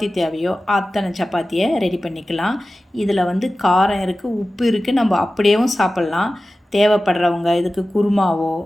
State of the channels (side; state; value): both; normal; correlation 0.95